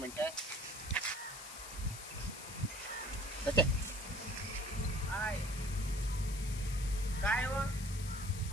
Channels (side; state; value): left; noise; hiss, 11 dB below the sound